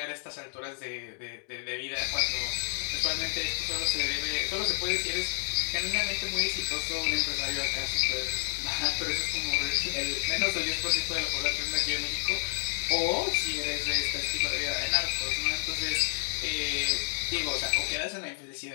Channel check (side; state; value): right; silent; digital silence